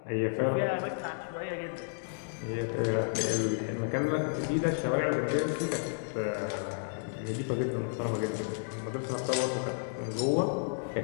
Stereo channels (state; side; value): silent; right; digital silence